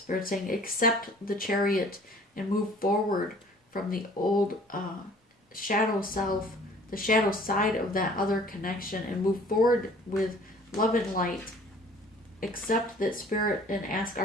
saying, accept the Chariot and move forward from the old shadow self, the shadow side of that other connection, and move forward with love and light. Accept that Spirit and ask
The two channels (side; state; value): both; normal; correlation 0.52